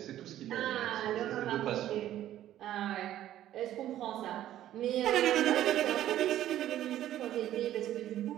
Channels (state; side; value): quieter; left; 12.6 dB